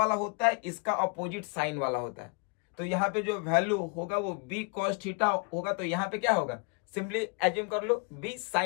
होता है, इसका अपोजिट साइन वाला होता है। तो यहाँ पे जो वैल्यू होगा वो बी कॉस थीटा होगा। तो यहाँ पे क्या होगा, सिंपली एज्यूम कर लो बी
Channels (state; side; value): quieter; right; 35.6 dB